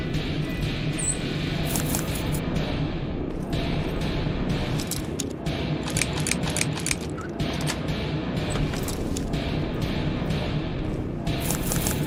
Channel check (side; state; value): both; identical; correlation 1.00